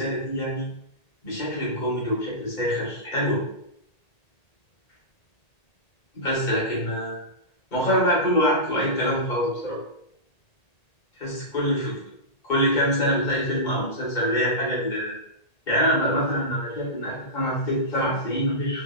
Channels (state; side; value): late; right; 1.8 ms